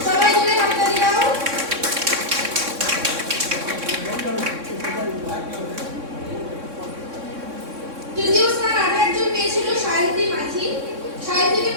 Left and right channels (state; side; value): late; left; 3.6 ms